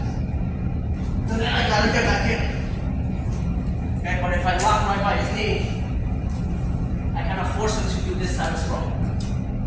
So then I gotta get back in. Okay, but if I lock right by his knee, I kind of force him to do this type of sprawl.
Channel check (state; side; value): identical; both; correlation 1.00